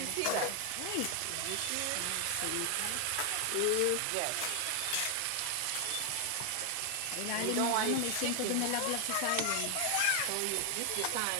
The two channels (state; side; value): different; both; correlation 0.00